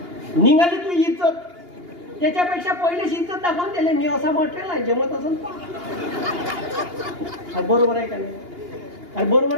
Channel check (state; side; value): late; left; 2.8 ms